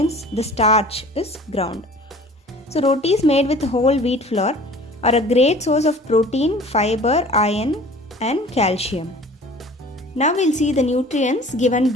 the starch, is ground. So rotis made with whole wheat flour are a great source of protein, fiber, iron and calcium. Now we'll see the nutrients given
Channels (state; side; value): normal; both; correlation 0.46